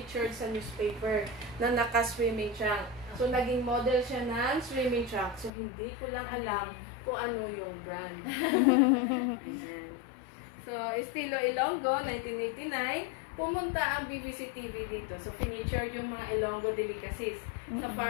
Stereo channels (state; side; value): drops out; right; at 5.5 s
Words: sa newspaper na naka-swimming trunk. So, naging model siya ng swimming trunk. So, hindi ko lang alam kung ano yung brand. Ayan. So, Estilo Ilonggo, 1989, pumunta ang BBC TV dito. So, featured yung mga Ilonggo delicacies sa